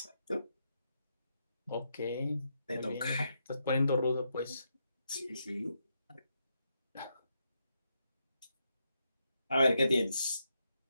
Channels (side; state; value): both; inverted; correlation -0.81